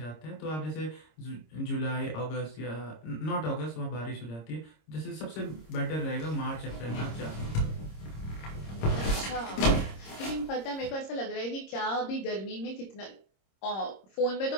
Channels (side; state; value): right; late; 26 ms